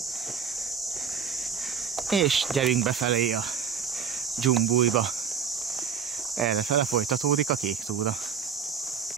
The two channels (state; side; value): quieter; left; 6.9 dB